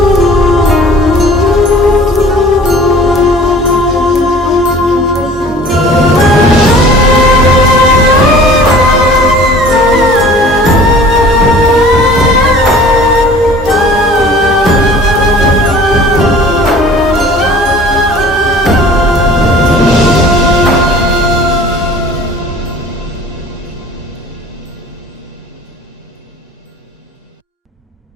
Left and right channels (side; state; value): both; normal; correlation 0.47